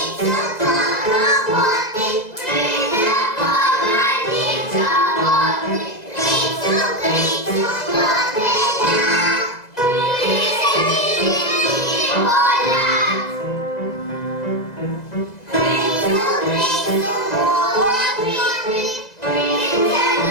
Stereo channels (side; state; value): right; late; 2.0 ms